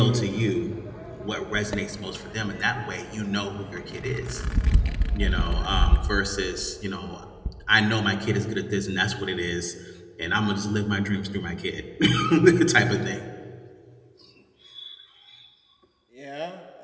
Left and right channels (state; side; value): identical; both; correlation 1.00